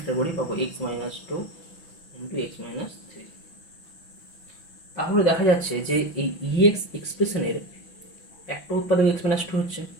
করি পাবো x minus 2 into x minus 3। তাহলে দেখা যাচ্ছে যে এই ইএক্স এক্সপ্রেশনের একটা উৎপাদক এক্স মাইনাস 2 হচ্ছে।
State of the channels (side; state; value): right; late; 6.0 ms